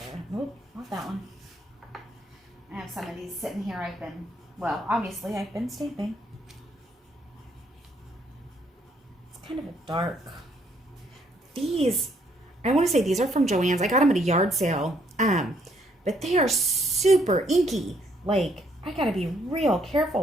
Nope, not that one. I have some of these sitting here. Obviously I've been stamping. It's kind of a dark. These, I want to say these are from Joann's. I got them at a yard sale. But they are super inky. Like, I gotta be real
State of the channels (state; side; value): normal; both; correlation 0.69